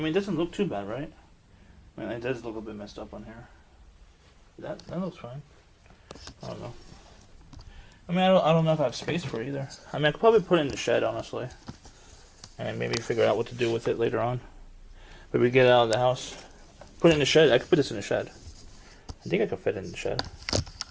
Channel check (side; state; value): both; identical; correlation 1.00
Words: it doesn't look too bad, right? I mean, it does look a bit messed up on here. That looks fine. I don't know. I mean, I don't know if I have space for it either. I mean, I could probably put it in the shed, honestly. And maybe figure out what to do with it later on. But we get it out of the house. Put it in the shed. I could put this in the shed. I think I could fit it in the shed.